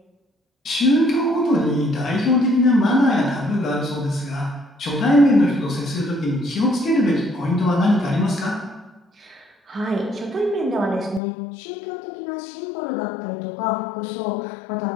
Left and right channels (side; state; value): right; drops out; at 11.2 s